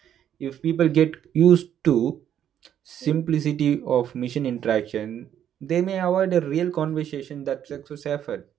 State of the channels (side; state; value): left; quieter; 10.0 dB